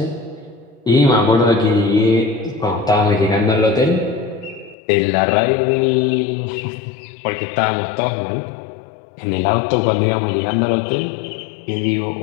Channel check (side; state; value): right; drops out; at 4.8 s